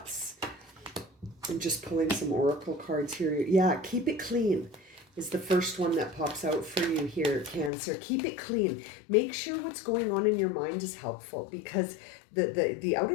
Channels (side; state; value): right; drops out; at 7.7 s